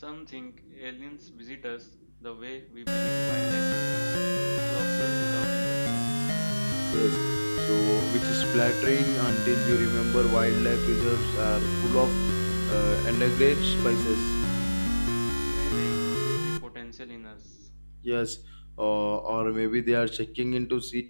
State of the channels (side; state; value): both; inverted; correlation -1.00